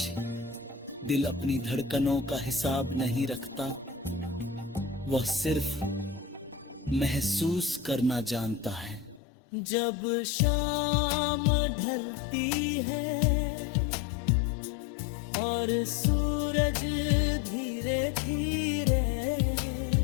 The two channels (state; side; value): drops out; right; at 9.2 s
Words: दिल अपनी धड़कनों का हिसाब नहीं रखता, वह सिर्फ महसूस करना जानता है। जब शाम ढलती है और सूरज धीरे धीरे